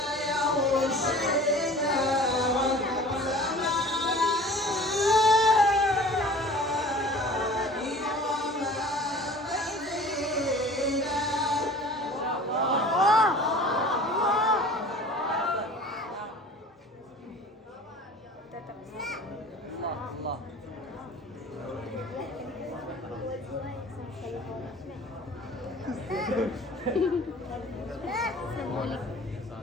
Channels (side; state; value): both; normal; correlation 0.44